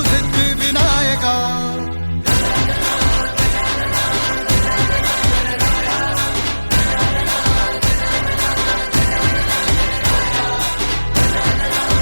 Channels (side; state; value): both; inverted; correlation -1.00